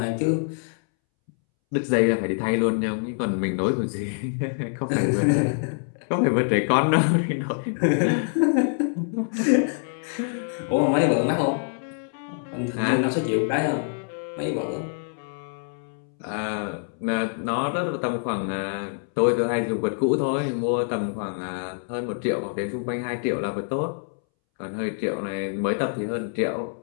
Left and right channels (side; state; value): right; silent; 61 dB below the other